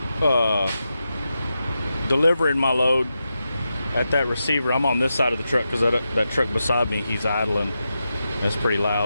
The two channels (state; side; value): inverted; both; correlation -0.89